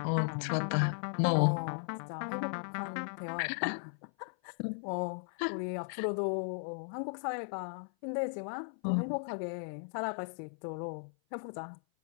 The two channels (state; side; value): silent; right; 54 dB below the other